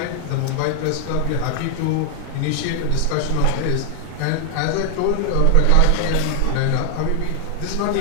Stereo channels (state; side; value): different; both; correlation 0.00